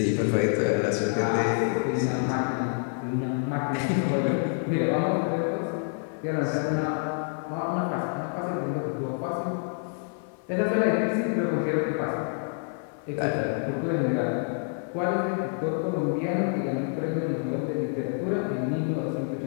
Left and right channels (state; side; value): silent; right; 59 dB below the other